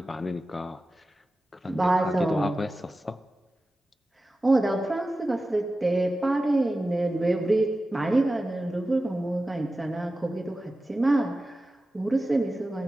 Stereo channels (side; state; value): both; normal; correlation 0.94